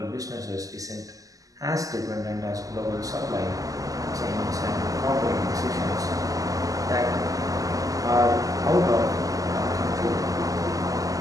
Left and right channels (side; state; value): left; late; 0.17 ms